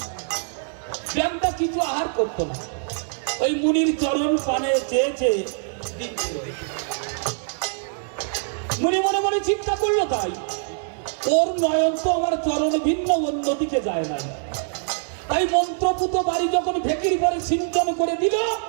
ব্যাংটা কিছু আহার করতো না, ওই মুনির চরণ পানে চেয়ে চেয়ে মুনি মনে মনে চিন্তা করলো, তাই ওর নয়ন তো আমার চরণ ভিন্ন অন্যদিকে যায় না। তাই মন্ত্রপুত বাড়ি যখন ভেকির পরে সিঞ্চন করে দিল,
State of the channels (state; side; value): silent; left; 57 dB below the other